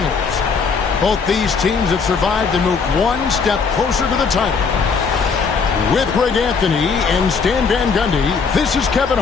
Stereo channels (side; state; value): right; quieter; 5.3 dB